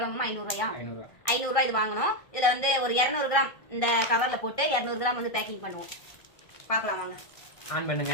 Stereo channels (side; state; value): right; late; 1.6 ms